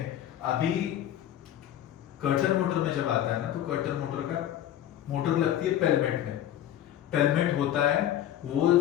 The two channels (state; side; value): quieter; right; 11.6 dB